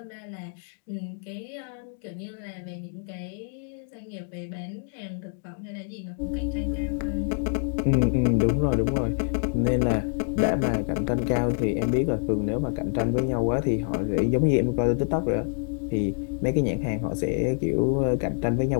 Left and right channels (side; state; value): right; silent; 59 dB below the other